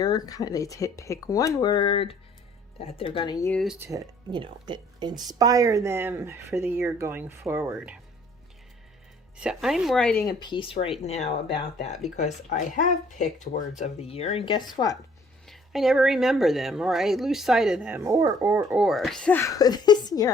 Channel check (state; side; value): normal; both; correlation 0.59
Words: They pick one word that they're going to use to, you know, inspire them for the year going forward. So I'm writing a piece right now about that because I have picked words of the year, and guess what? I never remember them, or I lose sight of them, or. So this year